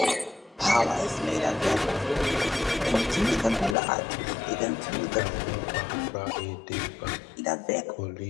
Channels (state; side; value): drops out; right; at 3.8 s